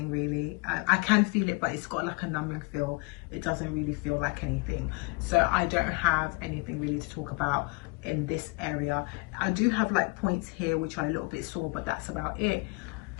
really. I can feel it, but it's got like a numbing feel. It doesn't really feel like anything. So I don't have anything really to talk about in this area. I do have like points here which are a little bit sore, but that's about it.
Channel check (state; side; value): quieter; right; 29.0 dB